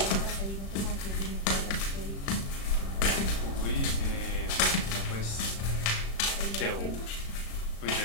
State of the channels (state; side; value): late; right; 36 ms